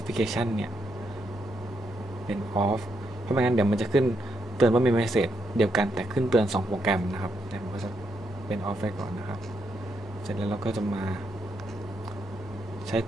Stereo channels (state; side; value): normal; both; correlation 0.80